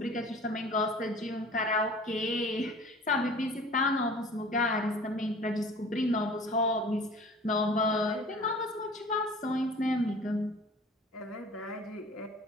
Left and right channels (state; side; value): normal; both; correlation 0.44